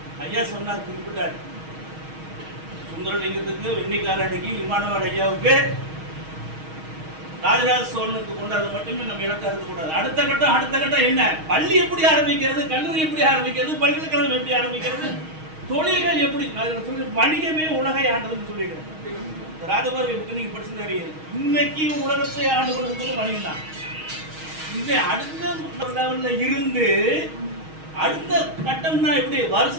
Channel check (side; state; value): left; late; 6.4 ms